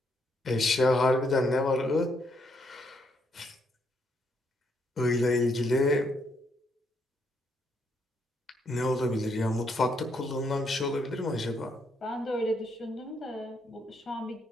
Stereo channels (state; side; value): normal; both; correlation 0.75